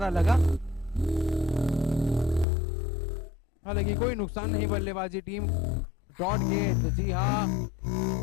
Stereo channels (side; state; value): right; drops out; at 2.5 s